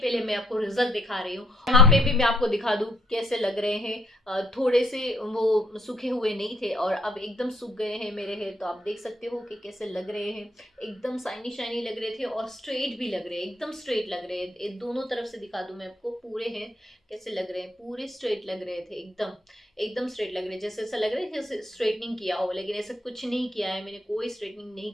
मैं आपको रिजल्ट दिखा रही हूँ। यहाँ पे भी मैं आपको दिखा दूं कैसे लग रहे हैं। थोड़े से वो सूखे हुए नहीं थे और अब एकदम सूख गए हैं मेरे हेयर। तो आप देख सकते हो कि कैसे लग रहे हैं, एकदम शाइनी शाइनी लग रहे थे और स्ट्रेट भी लग रहे हैं, एकदम स्ट्रेट लग रहे हैं। दोनों तरफ से दिखा दूं मैं आपको, पूरे हेयर कैसे लग रहे हैं, पूरे स्ट्रेट लग रहे थे, एकदम एकदम स्ट्रेट लग रहे हैं। जैसे ऐसा लग रहा है जैसे स्ट्रेटनिंग किया हो, लेकिन ऐसा कुछ नहीं किया है मैंने, कोई स्ट्रेटनिंग नहीं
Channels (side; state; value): both; normal; correlation 0.70